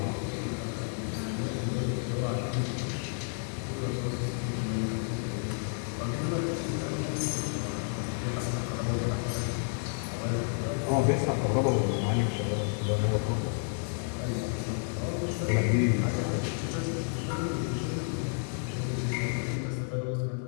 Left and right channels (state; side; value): silent; right; 57 dB below the other